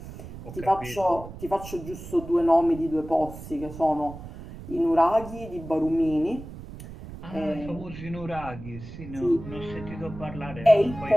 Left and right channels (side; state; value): right; noise; rumble, 13 dB below the sound